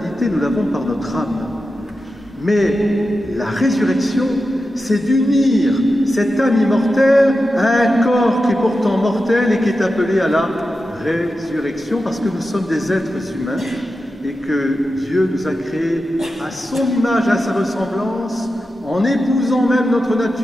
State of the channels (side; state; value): both; normal; correlation 0.91